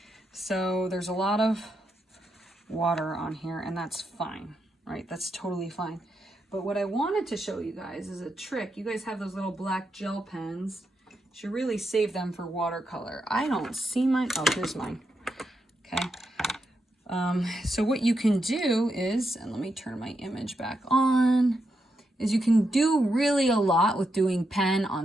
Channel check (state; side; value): normal; both; correlation 0.84